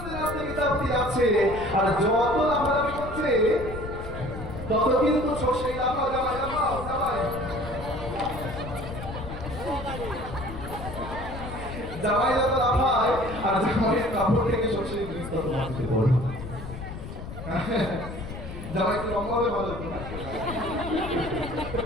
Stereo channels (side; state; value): left; noise; rumble, 9 dB below the sound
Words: নাচতে বিদ্যাপতি যাচ্ছে, আর যত লাফালাফি করছে তত কিন্তু সর্ষেই লাফাও, জামাই লাফাও, জামাই জামাই যত লাফায়, আর জামাইয়ের কাপড় থেকে সর্ষের বীজ তত মাটিতে পড়ে। জামাই একটু লম্বা হবে ভালো হতো না?